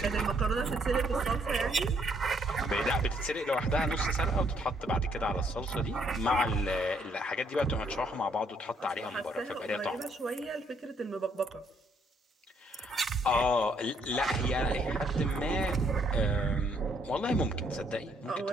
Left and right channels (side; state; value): both; normal; correlation 0.69